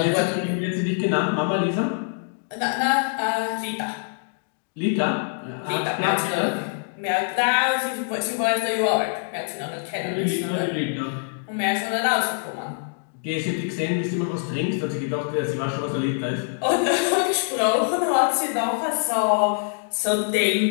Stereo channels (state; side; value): silent; right; digital silence